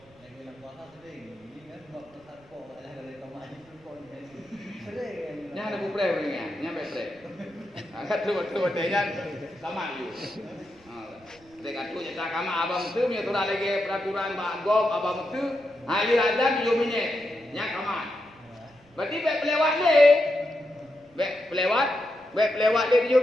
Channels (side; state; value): right; noise; rumble, 29 dB below the sound